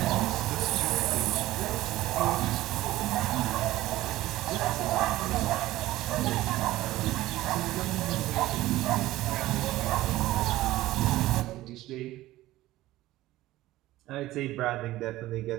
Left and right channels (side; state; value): left; quieter; 16.3 dB